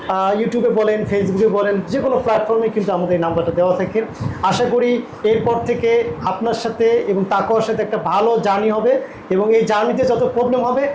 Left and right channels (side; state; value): both; identical; correlation 1.00